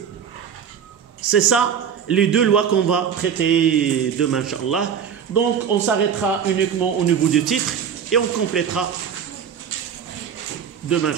C'est ça, les deux lois qu'on va traiter demain, Inch'Allah. Donc, on s'arrêtera uniquement au niveau du titre et on complétera demain,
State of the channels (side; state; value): left; quieter; 7.8 dB